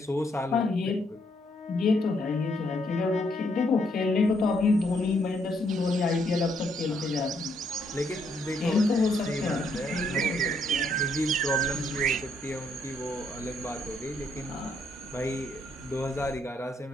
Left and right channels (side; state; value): both; normal; correlation 0.73